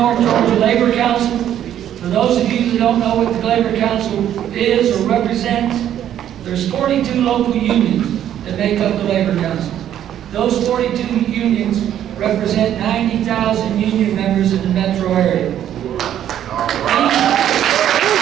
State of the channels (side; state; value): left; quieter; 10.8 dB